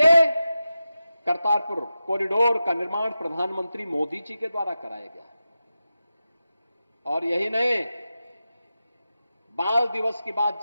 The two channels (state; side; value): inverted; both; correlation -0.92